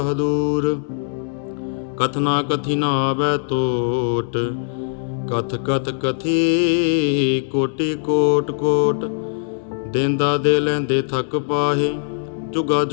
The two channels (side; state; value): right; silent; 62 dB below the other